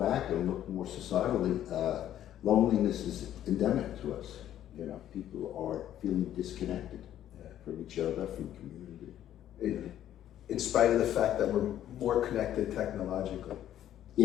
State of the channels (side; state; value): right; quieter; 11.5 dB